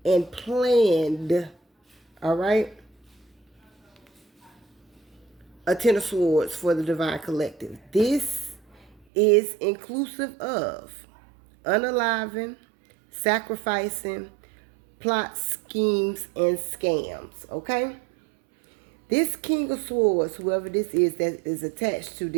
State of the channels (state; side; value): drops out; left; at 9.0 s